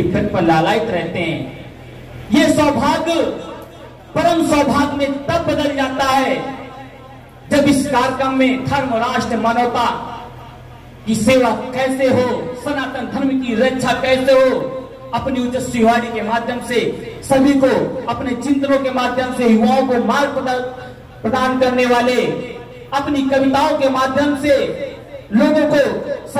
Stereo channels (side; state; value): both; identical; correlation 1.00